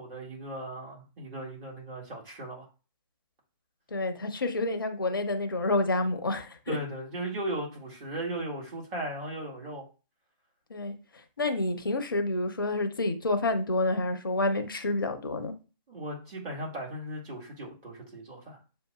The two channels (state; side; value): inverted; both; correlation -0.50